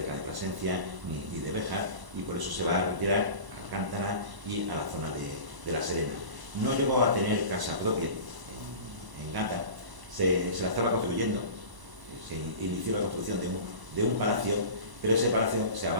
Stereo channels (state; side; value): late; left; 1.0 ms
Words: de Plasencia ni de Béjar, y por eso se va a retirar a Alcántara y a la zona de La Serena. No llegó a tener casa propia en Gata, se la estaba construyendo, se inició la construcción de un palacio, pero ese palacio se